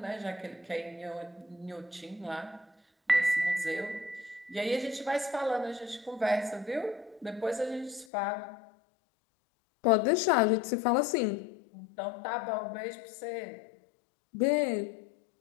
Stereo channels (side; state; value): right; drops out; at 8.1 s